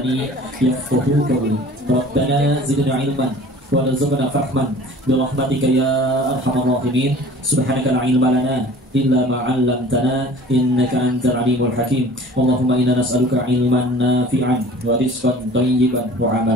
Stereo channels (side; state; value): both; normal; correlation 0.46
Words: yafqahu qawli. Rabbana zidna ilman warzuqna fahman bi rahmatika ya arhamar rahimin. Subhanaka la ilma lana illa ma 'allamtana innaka antal alimul hakim. Allahumma inna nas'aluka ilman nafi'an wa rizqan thayyiban wa